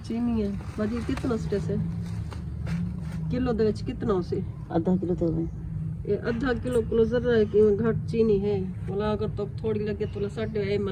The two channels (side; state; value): both; identical; correlation 1.00